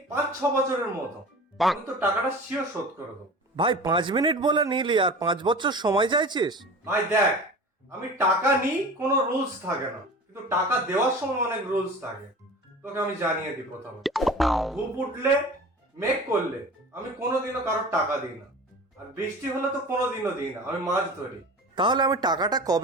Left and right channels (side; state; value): both; normal; correlation 0.37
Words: 5-6 বছরের মতো। আমি তো টাকাটা শিওর শোধ করে দেবো। ভাই 5 মিনিট বলে নিলি আর 5 বছর সময় চাইছিস? ভাই দেখ, আমি টাকা নিই কোনো রুলস থাকে না, কিন্তু টাকা দেওয়ার সময় অনেক রুলস থাকে। তোকে আমি জানিয়ে দিই প্রথমে, ধূপ উঠলে মেঘ করলে আমি কোনোদিনও কারোর টাকা দিই না। আর বৃষ্টি হলে তো কোনোদিনও দিই না, আমি মাছ ধরি। তাহলে আমি টাকাটা